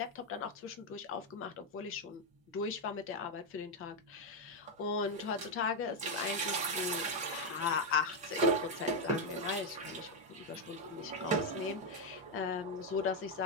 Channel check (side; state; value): both; normal; correlation 0.03